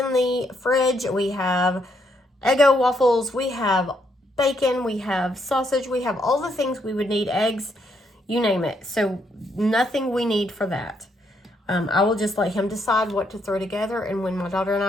the fridge. We have Eggo waffles. We have bacon. We have sausage. We have all the things we would need, eggs, you name it. So nothing we need for that. I will just let him decide what to throw together, and when my daughter and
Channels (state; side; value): normal; both; correlation 0.75